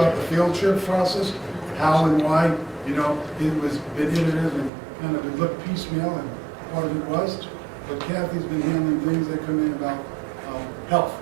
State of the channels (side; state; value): left; drops out; at 4.7 s